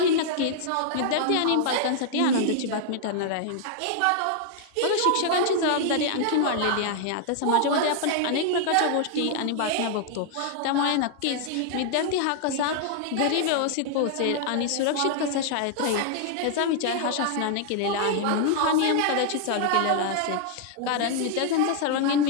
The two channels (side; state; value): both; different; correlation 0.00